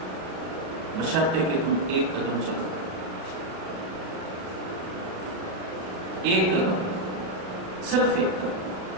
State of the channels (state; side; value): late; left; 37 ms